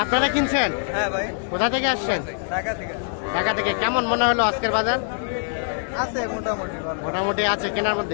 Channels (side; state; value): right; silent; digital silence